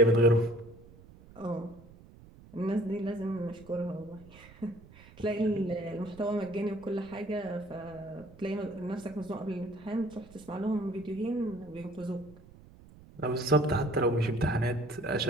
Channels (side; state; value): right; noise; rumble, 21 dB below the sound